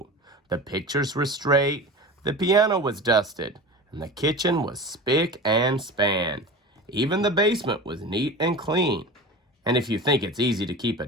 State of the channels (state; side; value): normal; both; correlation 0.32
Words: The pictures were straight, the piano was dusted, and the kitchen was spick and span. Even the basement was neat and clean. And if you think it's easy to keep a